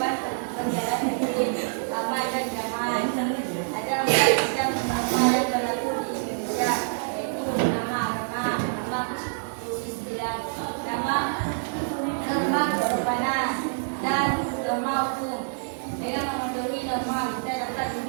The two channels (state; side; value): silent; left; digital silence